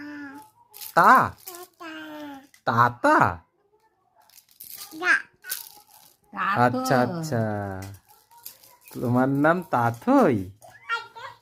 তা? তাতা? আচ্ছা আচ্ছা, তোমার নাম তাথই?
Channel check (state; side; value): identical; both; correlation 1.00